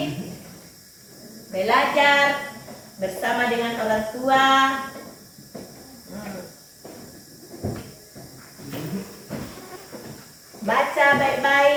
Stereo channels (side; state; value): both; identical; correlation 1.00